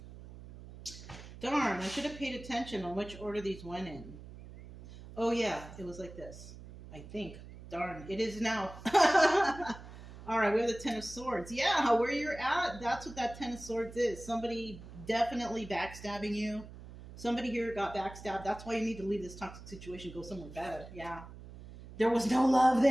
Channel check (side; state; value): right; noise; hum, 15 dB below the sound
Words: Darn, I should have paid attention on which order these went in. Oh yeah, it was like this, I think. Darn, it is now. All right, we have the Ten of Swords. Yeah, where you're at, that's what that Ten of Swords is. Somebody definitely backstabbing you. Somebody here got backstabbed. That's why you need to leave this toxic situation, go somewhere better. Yeah. There was no love